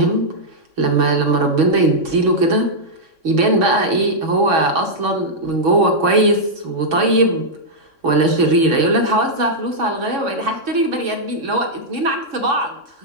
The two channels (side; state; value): left; late; 3.6 ms